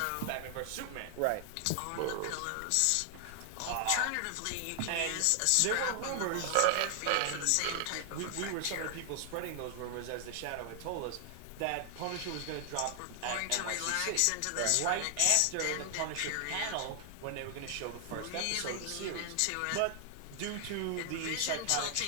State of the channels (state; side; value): different; both; correlation 0.00